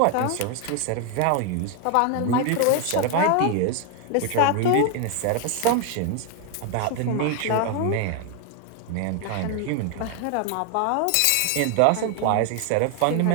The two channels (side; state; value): both; different; correlation 0.01